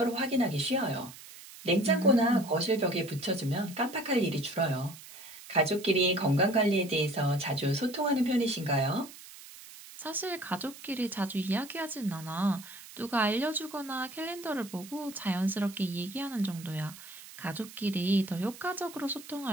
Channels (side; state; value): right; noise; hiss, 17 dB below the sound